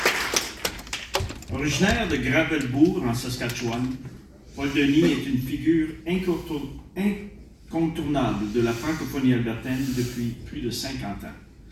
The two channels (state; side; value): identical; both; correlation 1.00